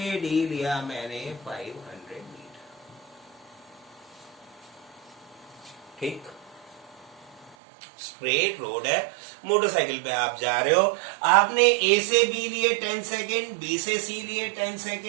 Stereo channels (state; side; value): drops out; left; at 7.6 s